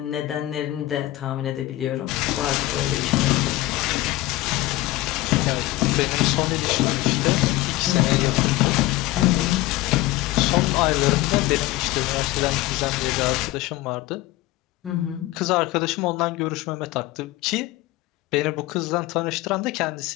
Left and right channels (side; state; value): right; quieter; 17.6 dB